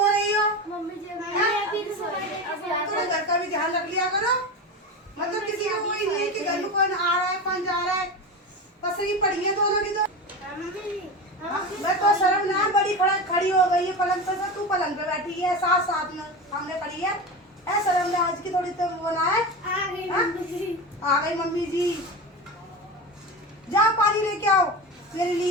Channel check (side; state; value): both; normal; correlation 0.24